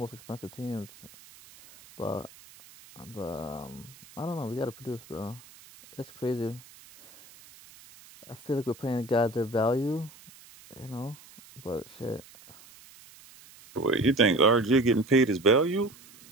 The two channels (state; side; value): noise; right; hiss, 22 dB below the sound